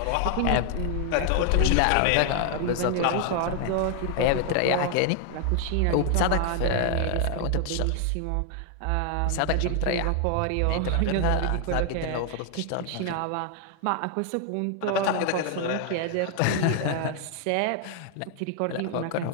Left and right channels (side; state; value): both; different; correlation 0.00